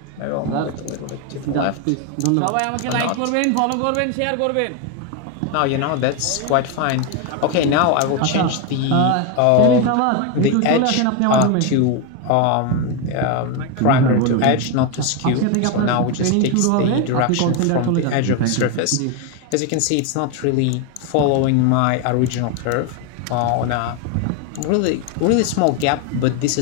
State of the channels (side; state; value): both; different; correlation 0.02